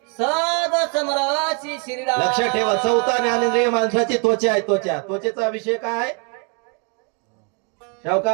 सद समराशी श्रीराम. लक्षात ठेवा 4था ज्ञानेंद्रिय माणसाची त्वचा आहे. त्वचेचा विषय काय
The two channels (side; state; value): left; quieter; 36.6 dB